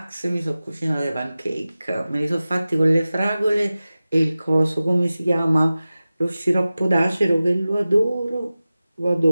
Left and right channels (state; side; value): inverted; both; correlation -0.96